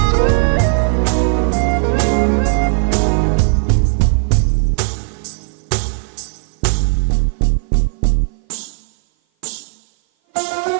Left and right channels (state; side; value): silent; left; 56 dB below the other